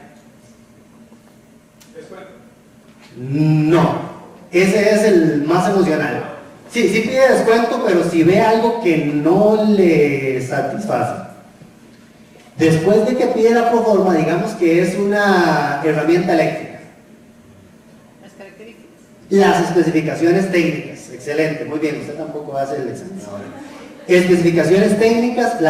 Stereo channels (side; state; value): both; identical; correlation 1.00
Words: No, ese es el más emocional. Sí, sí pide descuento, pero si ve algo que no le satisface. Después de que pide la proforma, digamos que es una herramienta eléctrica. Las características. Las especificaciones técnicas. Excelente, muy bien, usted tampoco hace el examen ahora. Especificaciones técnicas,